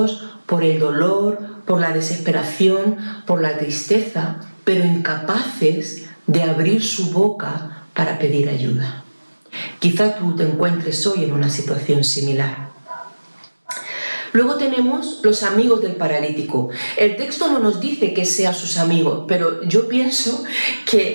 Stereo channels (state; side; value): inverted; both; correlation -1.00